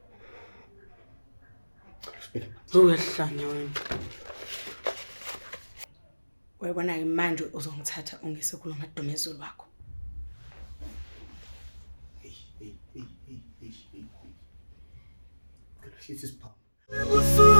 Uyahlanya wena. Uyabona ke manje uzongithatha ungise kuloMadumezulu wakho.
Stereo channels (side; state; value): both; inverted; correlation -1.00